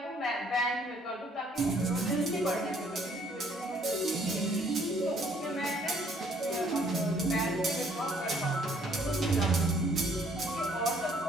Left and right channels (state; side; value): normal; both; correlation 0.63